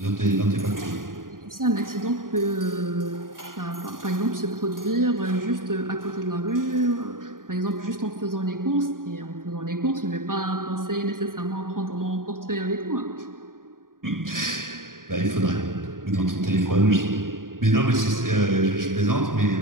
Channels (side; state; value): left; late; 0.90 ms